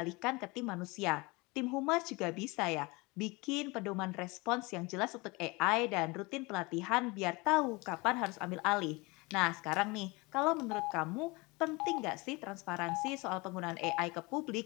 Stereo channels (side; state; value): right; quieter; 25.1 dB